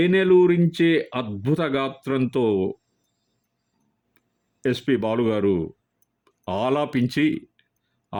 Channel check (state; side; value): identical; both; correlation 1.00